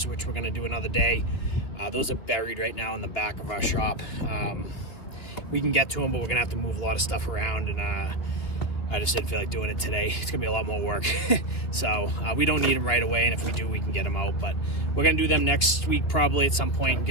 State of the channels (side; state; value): right; late; 2.6 ms